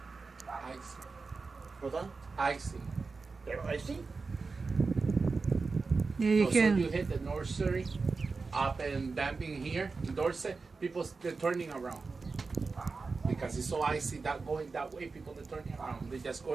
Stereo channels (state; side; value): quieter; left; 4.3 dB